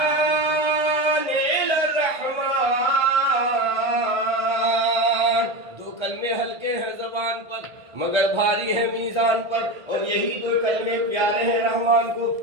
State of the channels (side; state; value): left; late; 1.3 ms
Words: الی الرحمن۔ دو کلمے ہلکے ہیں زبان پر مگر بھاری ہیں میزان پر، اور یہی دو کلمے پیارے ہیں رحمان کو۔